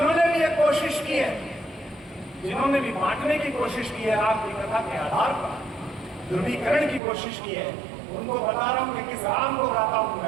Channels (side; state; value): left; drops out; at 7.0 s